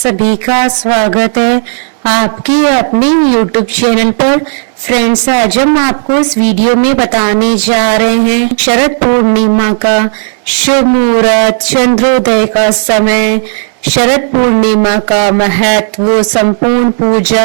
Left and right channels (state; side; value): silent; left; digital silence